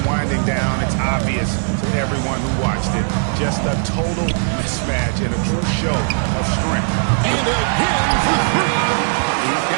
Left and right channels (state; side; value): silent; left; digital silence